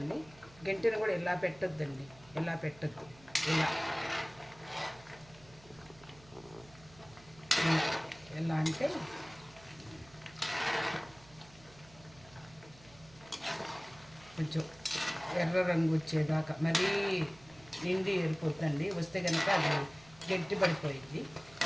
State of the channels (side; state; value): right; noise; hum, 23 dB below the sound